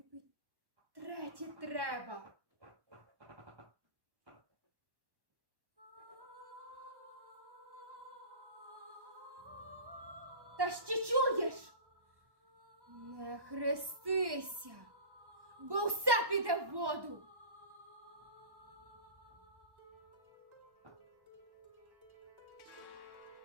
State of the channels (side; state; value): left; late; 1.1 ms